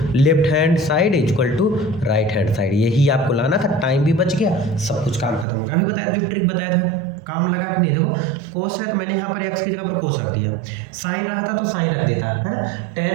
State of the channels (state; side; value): drops out; left; at 5.5 s